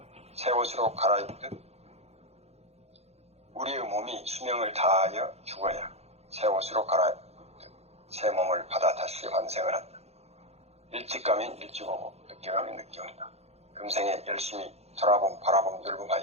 새 옷으로 갈아입듯 우리의 몸이 수명을 다하여 죽어야 새 옷으로 갈아입듯 새 몸을 받아 다시 환생을 한다. 일찍 가면 일찍 오고 늦게 가면 늦게 온다. 금생에 열심히 돌아봄 바라봄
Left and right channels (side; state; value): left; late; 0.31 ms